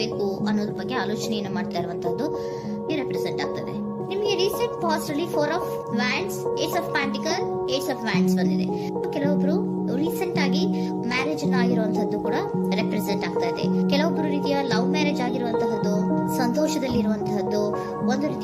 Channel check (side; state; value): both; identical; correlation 1.00